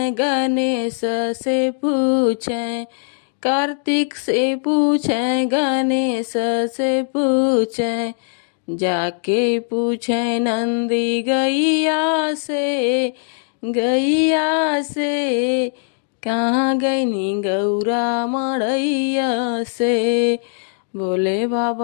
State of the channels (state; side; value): silent; right; digital silence